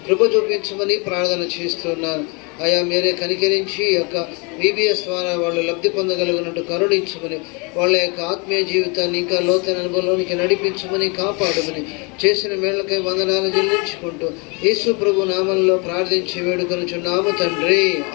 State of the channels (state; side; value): quieter; right; 31.4 dB